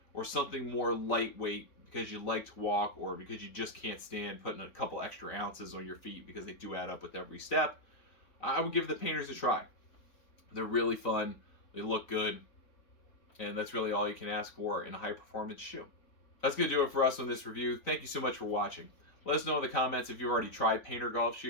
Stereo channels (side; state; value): right; late; 4.0 ms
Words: or something more lightweight because you like to walk or because you just can't stand putting a couple extra ounces on your feet because they do add up with every step, I would give the Payntrs a try. They're really fun. They look good. And that's really all you can ask for in a high-performance shoe. That's going to do it for us on this review. Thank you so much for watching. Let us know in the comments if you've already tried Payntr Golf